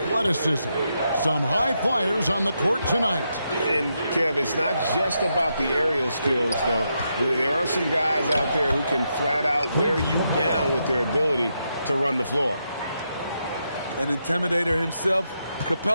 Some high flyers on the court tonight. And, Kev, it's not just about the aerial skills, though. There are some guys out there who can flat out wear you down with their ability to run the floor. An intimidator himself,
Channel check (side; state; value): both; inverted; correlation -0.82